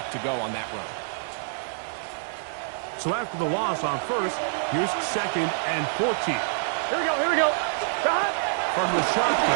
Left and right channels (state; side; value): silent; left; digital silence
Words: to go on that run. So after the loss on 1st, here's 2nd and 14. Here we go. Stop. From the